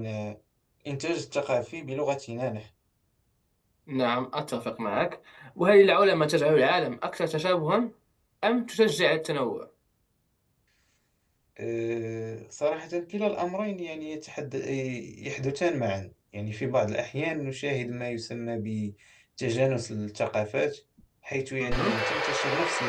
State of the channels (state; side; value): identical; both; correlation 1.00